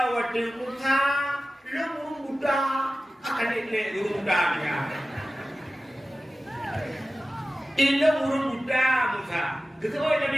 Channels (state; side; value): normal; both; correlation 0.95